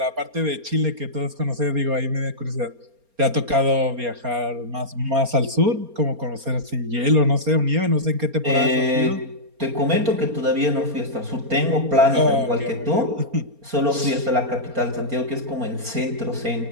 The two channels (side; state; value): left; late; 4.3 ms